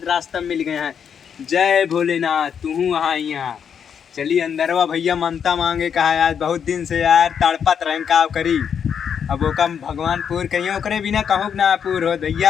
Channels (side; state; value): right; quieter; 7.6 dB